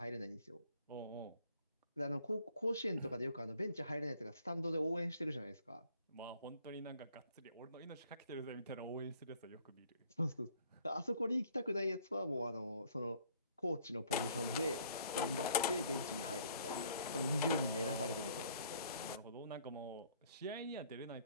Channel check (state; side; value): inverted; both; correlation -0.59